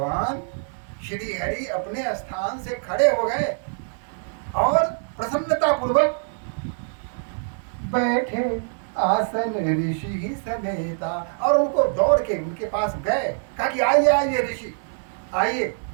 श्री हरि अपने स्थान से खड़े हो गए और प्रसन्नता पूर्वक बैठे आसन ऋषि ही समेता। और उनको दौड़ के उनके पास गए, कहा कि आइए आइए ऋषि आइए,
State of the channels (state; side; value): silent; left; 62 dB below the other